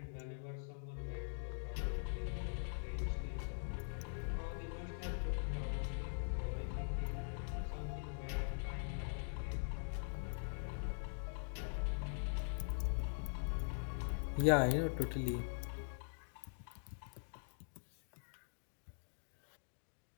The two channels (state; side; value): silent; right; digital silence